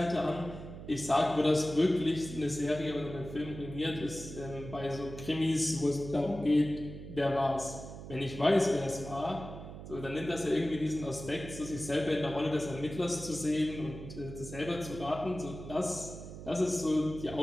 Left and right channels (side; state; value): right; noise; hum, 11 dB below the sound